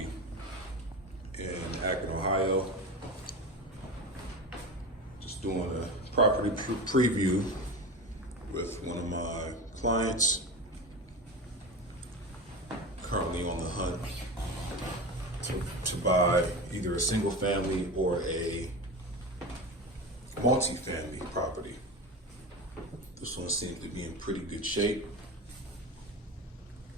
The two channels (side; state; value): both; normal; correlation 0.26